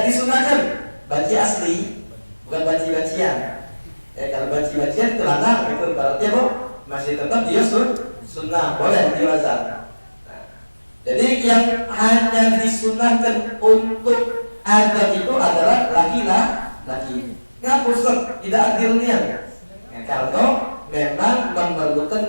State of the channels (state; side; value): inverted; both; correlation -1.00